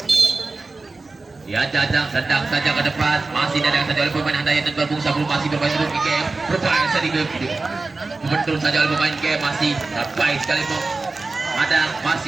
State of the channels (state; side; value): quieter; left; 3.6 dB